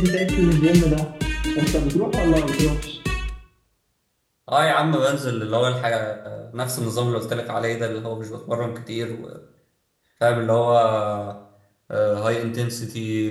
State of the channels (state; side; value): identical; both; correlation 1.00